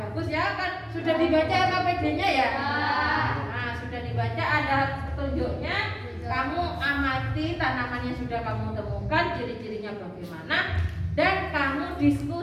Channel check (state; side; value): identical; both; correlation 1.00